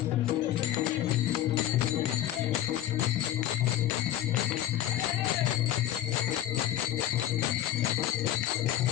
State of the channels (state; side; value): quieter; right; 12.6 dB